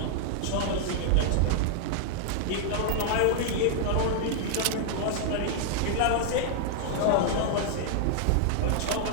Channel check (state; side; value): different; both; correlation -0.01